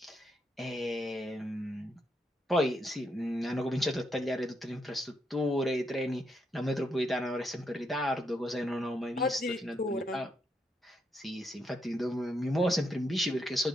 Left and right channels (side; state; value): both; normal; correlation 0.78